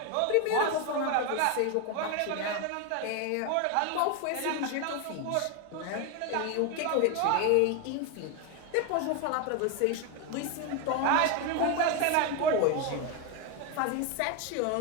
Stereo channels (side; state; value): both; different; correlation 0.02